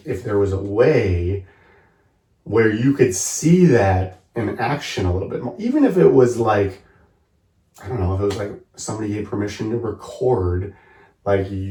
if there was a way where you could see that in action a little bit more, even if it was like, I don't know, if it was like somebody gave permission to record like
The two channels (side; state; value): both; identical; correlation 1.00